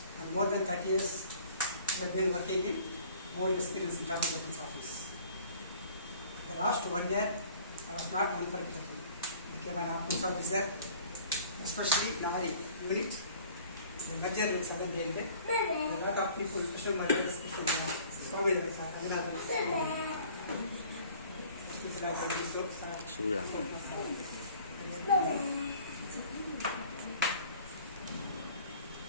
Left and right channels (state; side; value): inverted; both; correlation -0.51